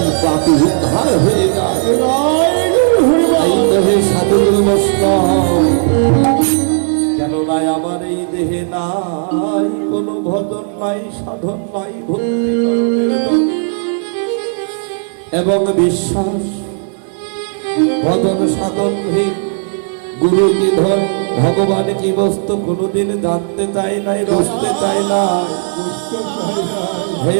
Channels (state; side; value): silent; left; digital silence